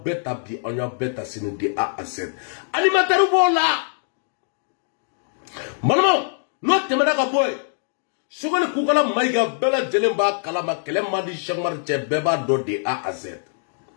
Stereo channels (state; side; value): silent; right; digital silence